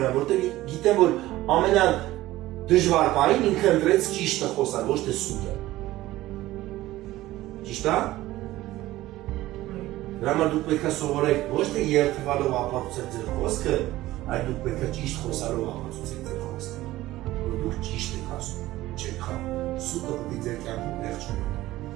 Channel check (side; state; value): left; quieter; 16.5 dB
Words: որտեղ գիտեմ, որ ամենադժվար պահին ինքը ընտրեց ճիշտը խոսալ, ոչ թե սուտը։ Ճիշտ է։ Դրա համար դուք պետք է սովորեք ոչ թե երթվալով ապացուցել ձեր խոսքը, այլ դուք պետք է ճիշտ խոսալով ապացուցեք ձեր խոսքը, որ դուք ճիշտ եք ասում, չեք խաբում։ Սուտը պետք է ձեր կյանքում տեղ չունենա։